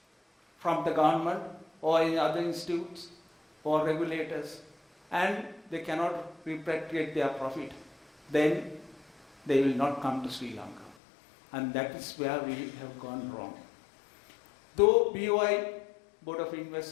from the government or in other institutes or regulators, and they cannot repatriate their profit, then they will not come to Sri Lanka. And that is where we have gone wrong. Though BOI, Board of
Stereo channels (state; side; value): drops out; right; at 11.0 s